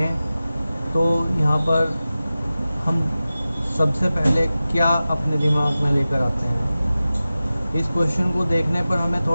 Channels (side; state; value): both; inverted; correlation -0.95